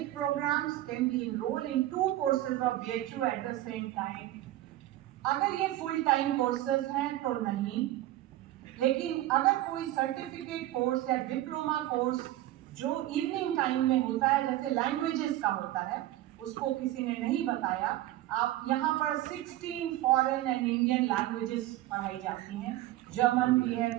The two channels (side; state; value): left; quieter; 15.1 dB